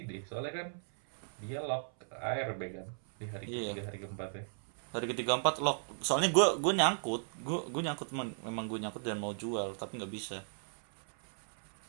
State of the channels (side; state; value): left; silent; 54 dB below the other